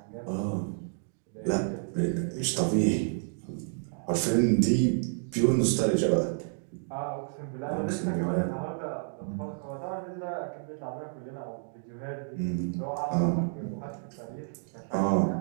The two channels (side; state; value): left; silent; digital silence